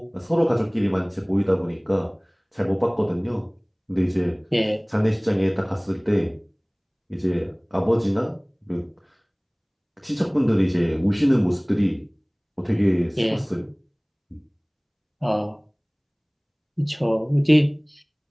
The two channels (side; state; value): both; identical; correlation 1.00